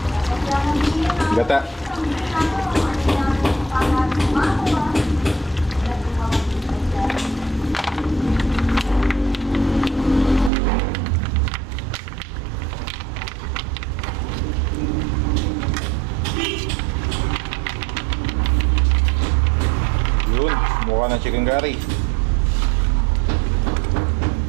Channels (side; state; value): left; drops out; at 10.5 s